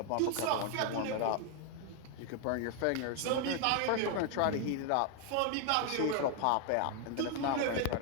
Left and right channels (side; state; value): both; different; correlation 0.00